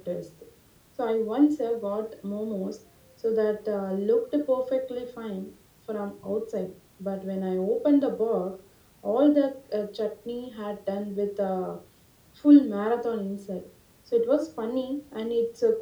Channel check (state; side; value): identical; both; correlation 1.00